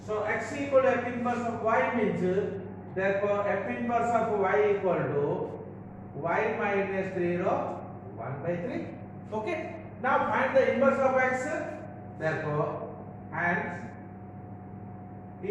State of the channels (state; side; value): identical; both; correlation 1.00